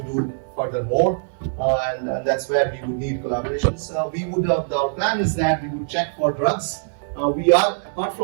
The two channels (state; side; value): silent; left; digital silence